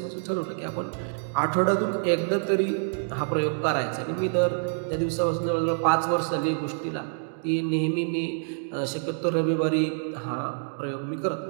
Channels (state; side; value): silent; left; digital silence